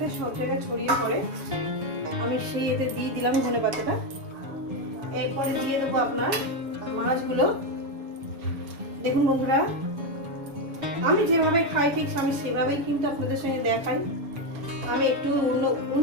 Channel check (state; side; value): late; left; 7.1 ms